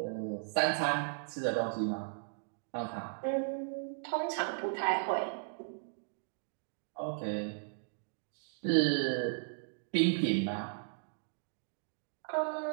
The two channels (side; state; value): left; silent; digital silence